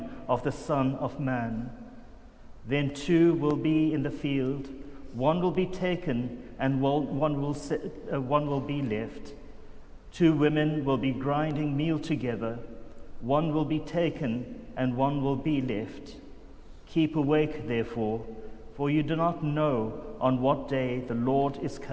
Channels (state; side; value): identical; both; correlation 1.00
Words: of the Son of Man. Then two will be in the field, one will be taken and one will be left. Two women will be grinding meal together, one will be taken and one will be left. Keep awake, therefore, for you do not know on what day the Lord is